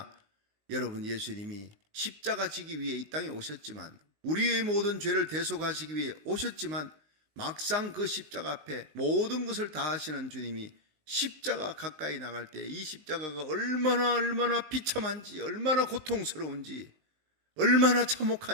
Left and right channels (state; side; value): late; left; 19 ms